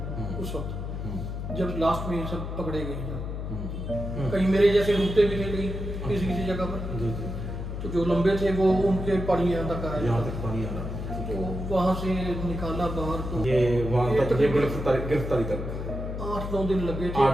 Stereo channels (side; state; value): left; noise; hum, 5 dB below the sound